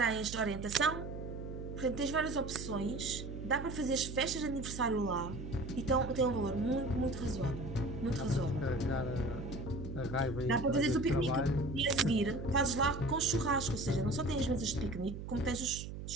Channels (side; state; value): right; noise; hum, 8 dB below the sound